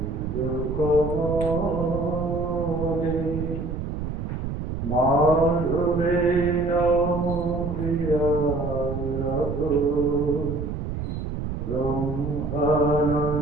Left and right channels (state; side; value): noise; right; rumble, 4 dB below the sound